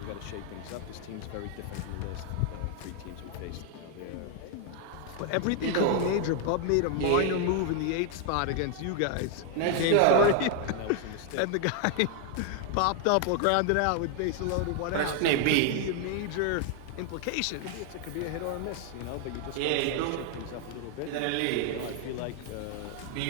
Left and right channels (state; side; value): different; both; correlation 0.00